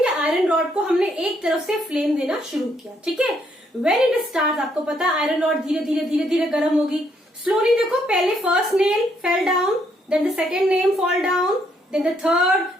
आयरन रॉड को हमने एक तरफ से फ्लेम देना शुरू किया. ठीक है. व्हेन इट स्टार्ट, आपको पता है आयरन रॉड धीरे धीरे धीरे धीरे गर्म होगी. स्लोली देखो, पहले first nail fell down, then the second nail fall down, then the third,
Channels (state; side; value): normal; both; correlation 0.71